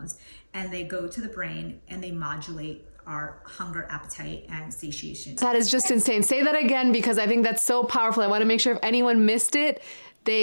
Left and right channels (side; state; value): both; inverted; correlation -1.00